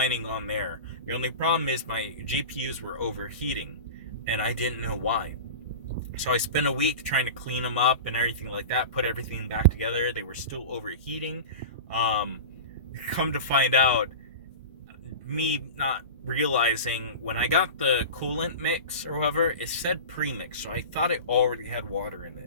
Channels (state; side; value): inverted; both; correlation -0.32